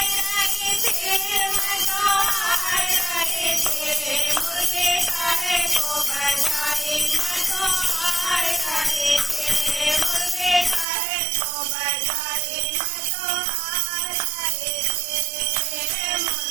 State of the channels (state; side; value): drops out; left; at 10.9 s